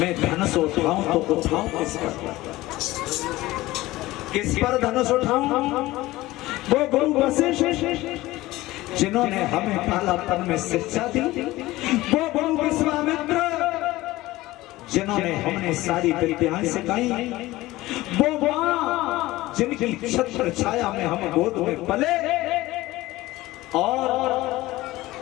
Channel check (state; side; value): quieter; right; 18.1 dB